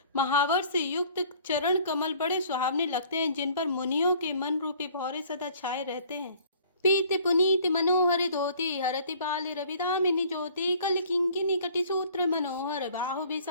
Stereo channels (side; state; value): both; inverted; correlation -0.54